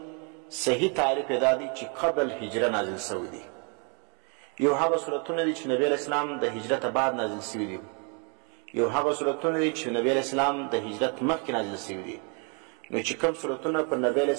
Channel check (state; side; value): quieter; left; 37.3 dB